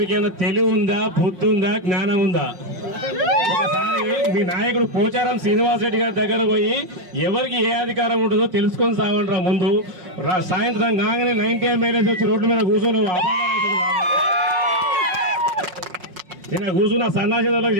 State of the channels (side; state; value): left; late; 5.5 ms